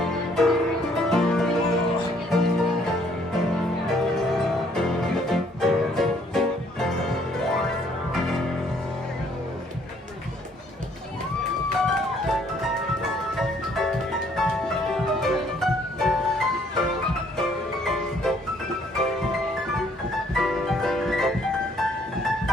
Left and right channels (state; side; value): normal; both; correlation 0.64